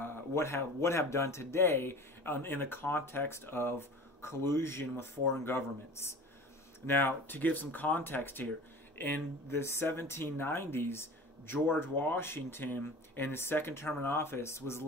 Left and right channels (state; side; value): normal; both; correlation 0.39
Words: have done today in the context of collusion with foreign governments. Now, to give some context here, in the 1790s, George Washington, in his second term in office, was